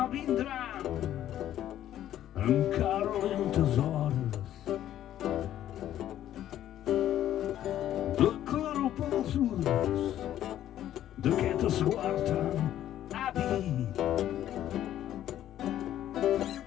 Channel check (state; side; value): quieter; right; 11.9 dB